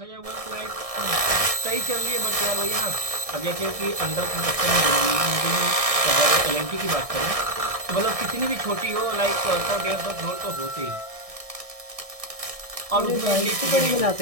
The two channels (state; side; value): late; left; 1.6 ms